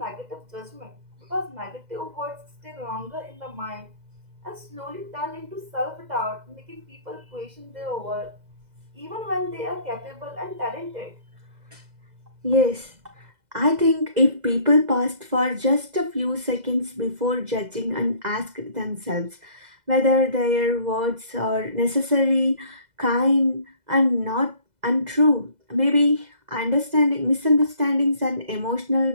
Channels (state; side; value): late; left; 2.0 ms